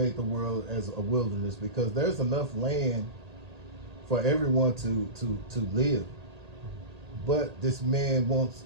the world as a wilderness, because there's enough land for everyone to live. But this man wants,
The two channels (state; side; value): late; left; 1.8 ms